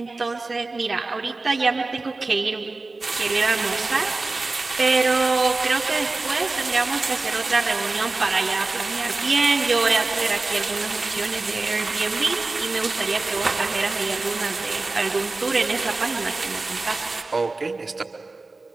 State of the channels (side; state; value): left; quieter; 3.5 dB